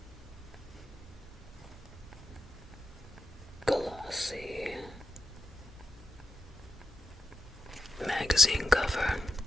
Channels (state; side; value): normal; both; correlation 0.85